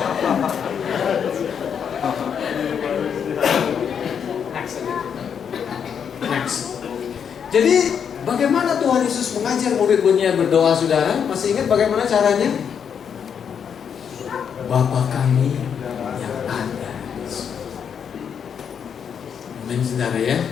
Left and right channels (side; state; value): right; quieter; 7.5 dB